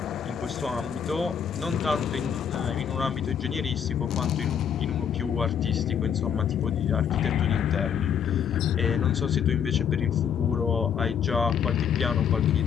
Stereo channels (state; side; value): quieter; right; 7.9 dB